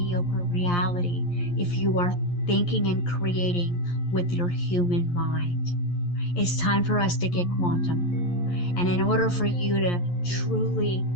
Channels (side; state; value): right; late; 11 ms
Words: reality if you are thinking and creating with your human mind. It's time for us to get quantum. And in order for you to truly